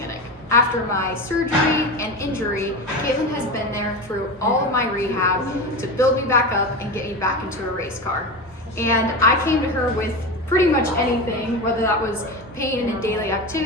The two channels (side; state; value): both; normal; correlation 0.23